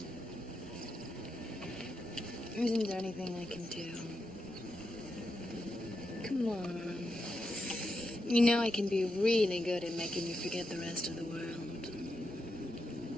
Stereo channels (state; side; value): normal; both; correlation 0.85